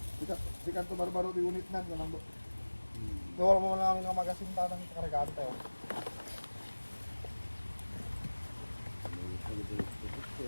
Sikan to barbaro di unit nan kanang do. Wala mo lang ang magasinta ng karagante. Oh.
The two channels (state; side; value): inverted; both; correlation -1.00